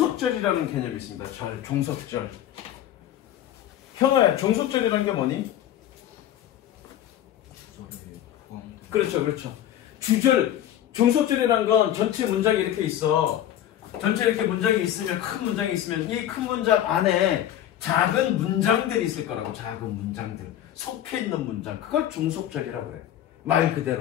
개념이 있습니다. 종속절. 현아야, 종속절이라는 게 뭐니? 그렇죠, 그렇죠. 주절, 종속절이라는 건 전체 문장이 이렇게 있어. 전체 이렇게 문장이 있으면, 큰 문장이 있으면 이 큰 문장 안에 작은 문장들이 있을 거라고. 작은 문장들. 속해 있는 문장. 그걸 종속절이라고 해. 말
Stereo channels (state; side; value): quieter; right; 11.6 dB